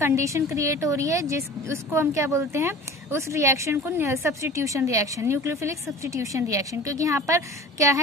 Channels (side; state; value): both; normal; correlation 0.40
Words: क्रिएट हो रही है उसको हम क्या बोलते हैं, उस रिएक्शन को substitution reaction, nucleophilic substitution reaction. क्योंकि यहाँ पर क्या